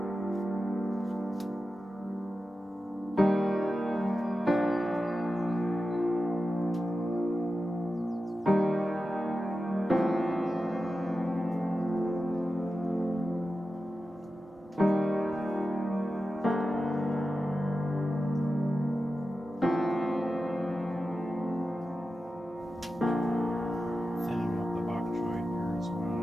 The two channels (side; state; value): both; normal; correlation 0.92